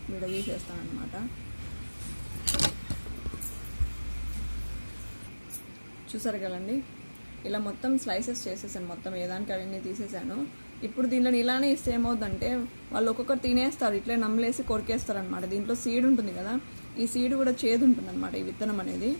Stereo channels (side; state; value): both; inverted; correlation -1.00